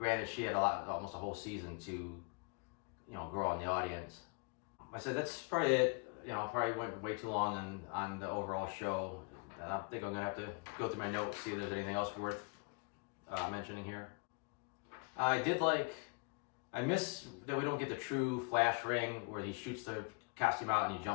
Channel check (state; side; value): quieter; right; 33.9 dB